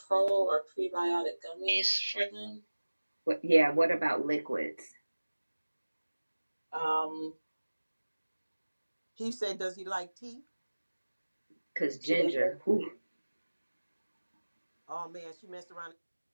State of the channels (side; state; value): both; inverted; correlation -1.00